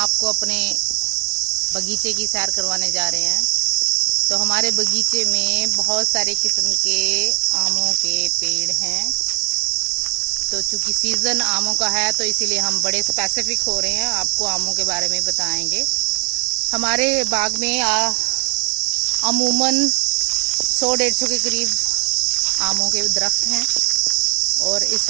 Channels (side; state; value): left; quieter; 38.9 dB